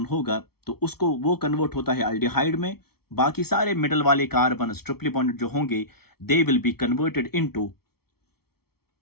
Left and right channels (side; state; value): right; late; 0.95 ms